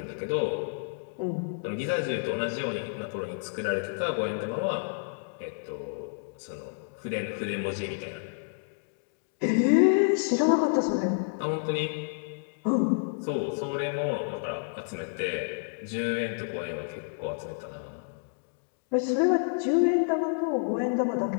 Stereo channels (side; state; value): right; silent; digital silence